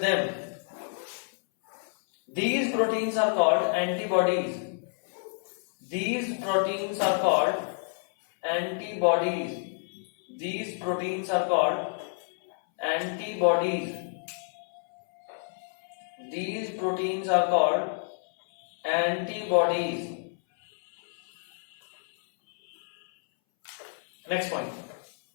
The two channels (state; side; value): silent; right; 59 dB below the other